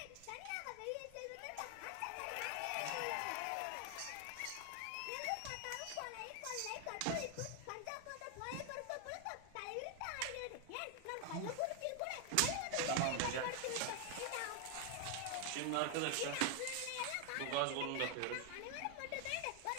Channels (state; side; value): different; both; correlation 0.00